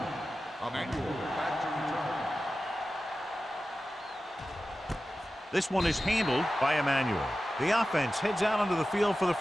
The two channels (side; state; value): both; normal; correlation 0.94